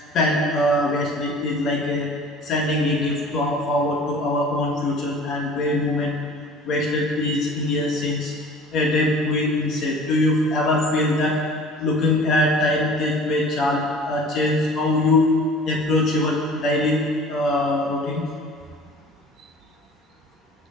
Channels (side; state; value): both; normal; correlation 0.45